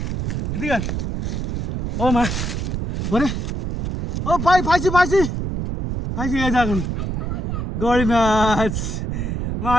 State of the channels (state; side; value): noise; right; rumble, 3 dB below the sound